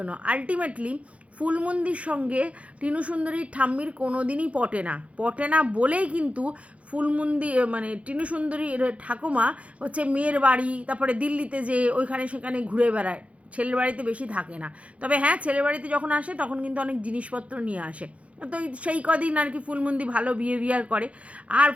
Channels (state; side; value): late; left; 0.064 ms